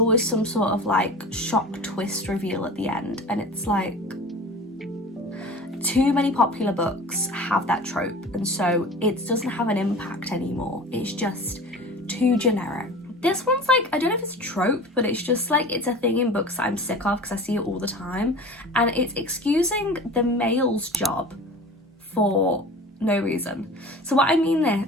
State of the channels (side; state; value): both; normal; correlation 0.38